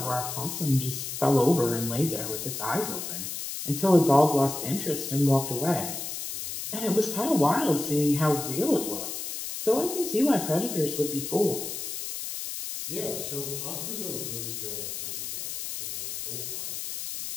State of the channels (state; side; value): noise; left; hiss, 6 dB below the sound